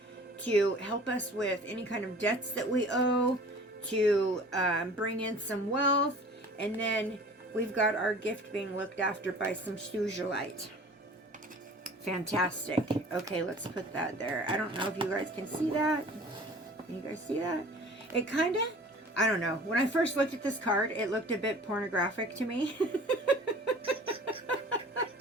to help us with any kind of debts that we owe, to bring in some wealth, and then we've got our gift being looked after by some sugilite. Fantastic. Okay, let's put that there. I don't know if you guys can see that. Can you guys see that? It kind of, I don't know. When I first looked at this card, it looked a bit pornographic to me.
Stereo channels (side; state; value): both; normal; correlation 0.46